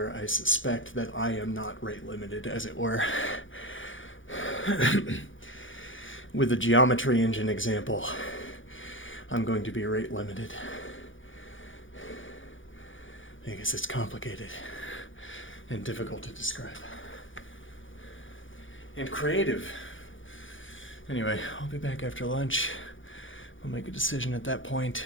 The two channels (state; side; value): late; right; 0.57 ms